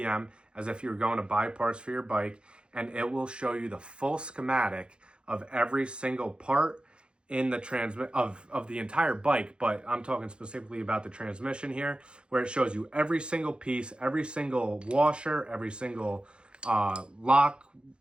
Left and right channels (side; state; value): left; late; 0.054 ms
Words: as if you were going to buy parts for your bike, and it will show you the full schematic of every single part in the of the entire bike, but I'm talking specifically about the transmission here, where it shows you every single piece, every single washer, every single lock